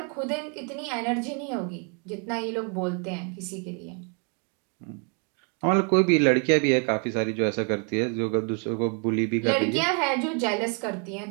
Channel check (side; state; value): left; quieter; 38.7 dB